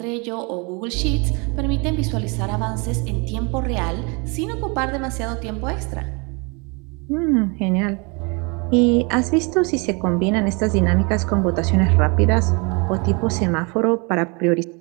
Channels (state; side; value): quieter; left; 30.9 dB